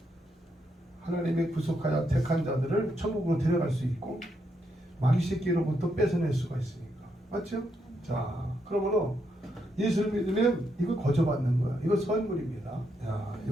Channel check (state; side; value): normal; both; correlation 0.79